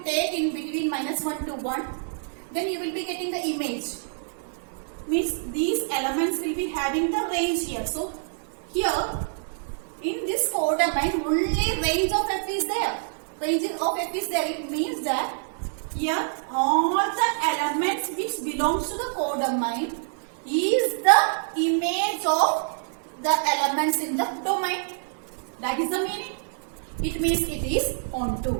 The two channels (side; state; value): left; silent; digital silence